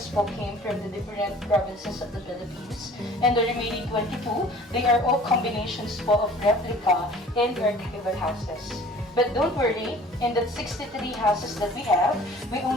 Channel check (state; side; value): normal; both; correlation 0.48